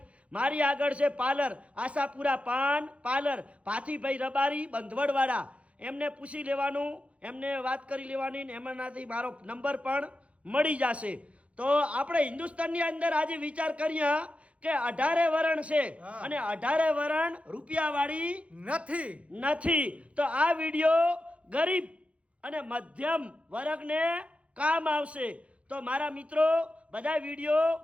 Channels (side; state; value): left; late; 0.063 ms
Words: મારી આગળ છે પાર્લર આશાપુરા પાન પાર્લર, ભાથીભાઈ રબારી, બંધવડવાડા. એમને પૂછી લેવાનું, એમને વાત કરી લેવાની, ને એમનાથી મારો નંબર પણ મળી જશે. તો આપણે હિન્દુસ્તાનની અંદર આજે વિચાર કરીએ કે 18 વરણ છે, અને 18 વરણ રૂપિયાવાળી નથી. તો આ વિડીયો ગરીબ અને મધ્યમ વર્ગને કામ આવશે. તો મારા મિત્રો બધા વિડીયો